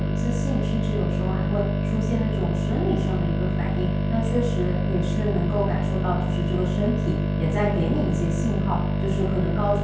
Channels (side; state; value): both; identical; correlation 1.00